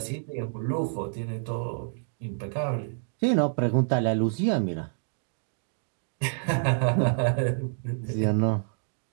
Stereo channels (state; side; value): silent; left; digital silence